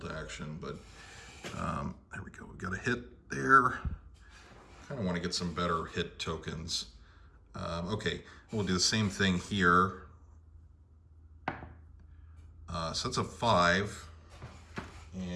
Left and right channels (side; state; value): both; identical; correlation 1.00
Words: Action, but there we go. We got a hit there. Kind of want to get some better hit tokens. Okay, we'll do the same thing here. So that's a 5,